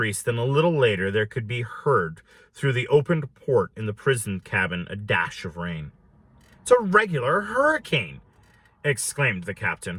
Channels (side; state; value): both; identical; correlation 1.00